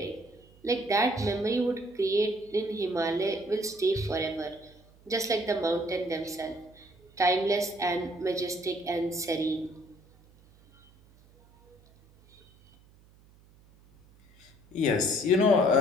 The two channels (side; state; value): right; noise; hum, 28 dB below the sound